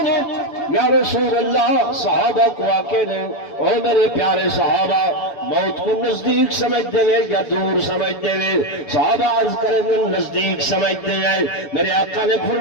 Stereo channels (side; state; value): right; late; 7.0 ms